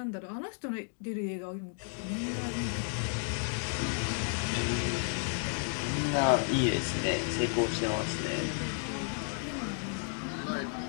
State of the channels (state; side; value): silent; right; 56 dB below the other